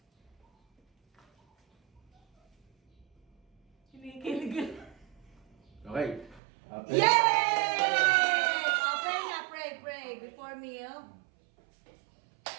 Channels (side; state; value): left; drops out; at 6.4 s